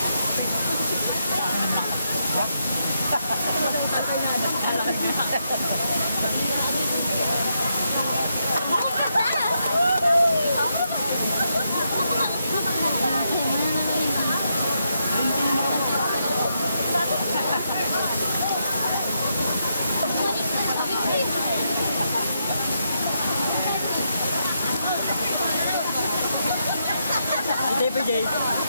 Ito pa, Jay.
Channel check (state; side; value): inverted; both; correlation -0.81